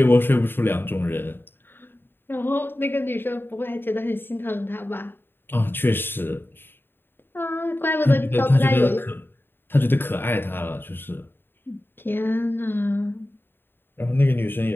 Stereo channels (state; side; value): late; right; 0.10 ms